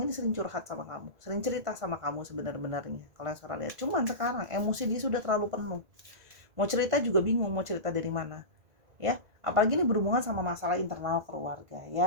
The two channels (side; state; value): left; late; 1.9 ms